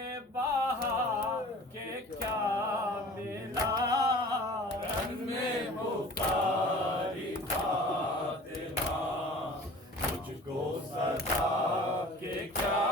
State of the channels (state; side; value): normal; both; correlation 0.44